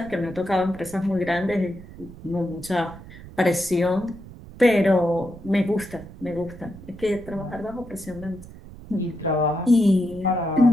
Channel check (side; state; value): right; noise; rumble, 17 dB below the sound